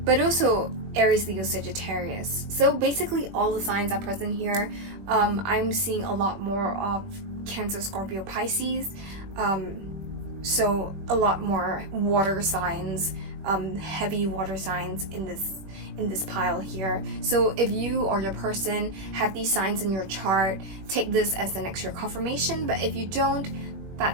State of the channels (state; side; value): late; left; 20 ms